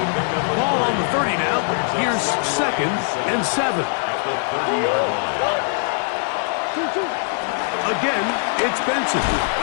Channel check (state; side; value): silent; right; 61 dB below the other